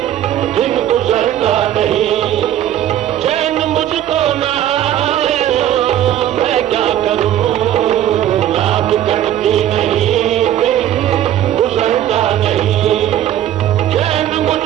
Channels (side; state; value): left; quieter; 11.6 dB